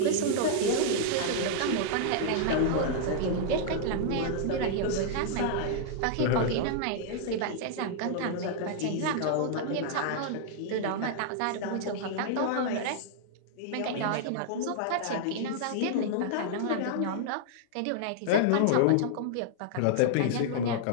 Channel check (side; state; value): both; different; correlation -0.01